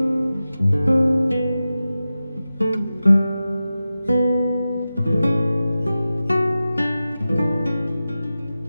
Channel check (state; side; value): inverted; both; correlation -0.94